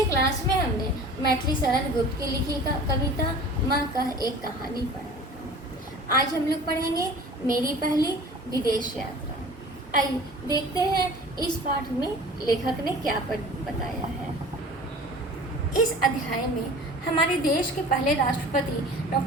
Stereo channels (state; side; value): normal; both; correlation 0.43